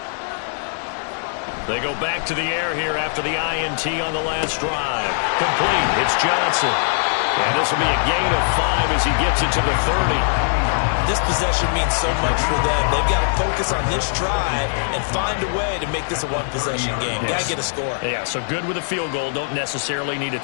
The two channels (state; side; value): silent; right; 58 dB below the other